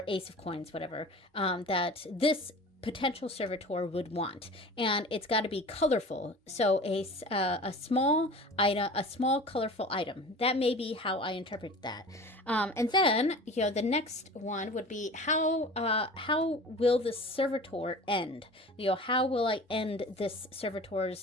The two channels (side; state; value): both; normal; correlation 0.39